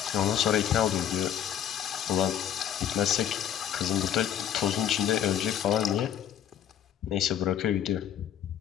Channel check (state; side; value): quieter; right; 10.1 dB